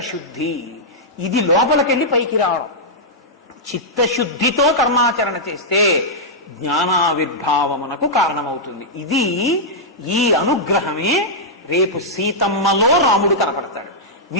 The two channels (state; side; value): normal; both; correlation -0.09